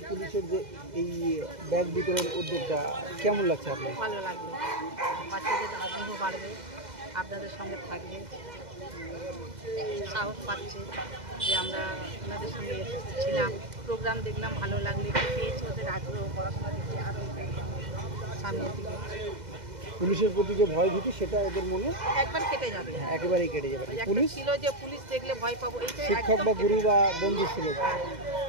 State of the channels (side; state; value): left; late; 2.0 ms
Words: পুলিশের যে এই ব্যাগ বিতরণ উদ্যোগটা কেমন লাগছে আপনার? ভালো লাগলো, বাচ্চাদের আগ্রহ বাড়বে, আপনাদের সঙ্গে থাকবে, সাহস পাচ্ছে যে আমরা ওনাদের সঙ্গে ছিলাম, প্রোগ্রাম দেখলাম, ভালো লাগলো, একটু পেয়েছে ওদের আগ্রহ, পড়াশোনা দেখে আরও সামনের দিকে। পুলিশের প্রতি যে ভয় ভীতি সেটা এদের মনে একবার কেটে যাবে, একেবারেই কেটে যাবে। পুলিশ ছিল যে পুলিশ দেখলে ভয় পাবো, এইটা শিক্ষক বা গুরু বা বন্ধু ছিল।